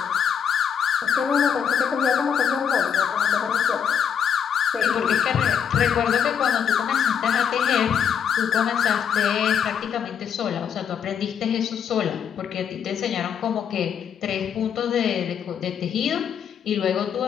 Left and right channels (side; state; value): right; quieter; 7.9 dB